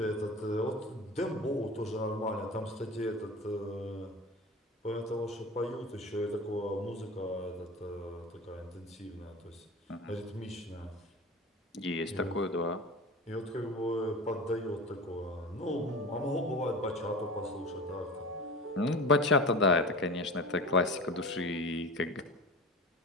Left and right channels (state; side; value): normal; both; correlation 0.33